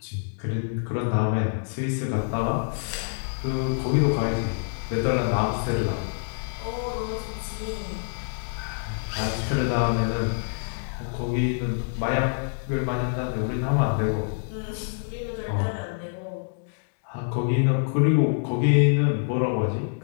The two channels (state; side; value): silent; right; digital silence